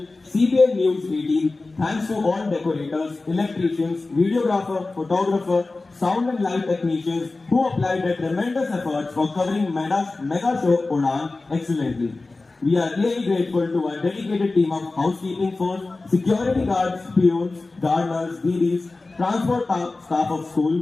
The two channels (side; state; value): right; quieter; 3.4 dB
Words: CBN News 18, thanks to all decorators, electricians, videographer, photographer, sound and light technicians who applied their tremendous efforts for covering mega show Udan excellently. We are really grateful to our dedicated team of housekeeping force, security guards, peons, gardeners, DDs, transport staff of